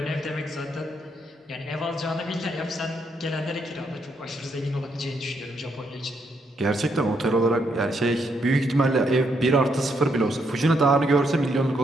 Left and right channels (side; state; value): both; normal; correlation 0.76